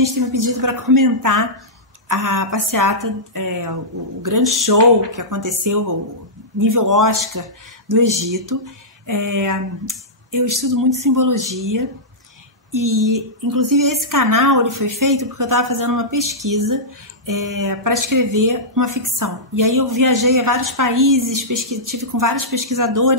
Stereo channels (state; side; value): normal; both; correlation -0.14